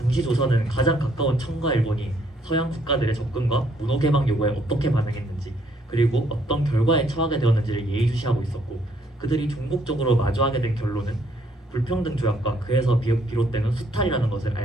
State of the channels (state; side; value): normal; both; correlation 0.68